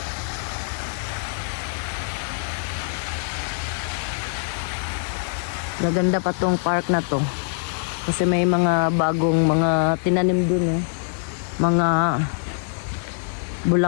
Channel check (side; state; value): right; silent; digital silence